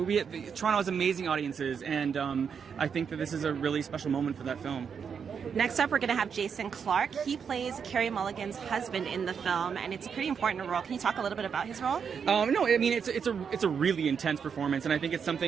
has amazing audiences, and I think that this is a really special moment for that film. Next up, we're going to have Jason Clarke. He plays Carey Mulligan's husband in the film, and it's a pretty important role. Can you talk a little bit about his role? No, I mean it's a really intense performance, and I think it's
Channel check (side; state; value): left; quieter; 6.8 dB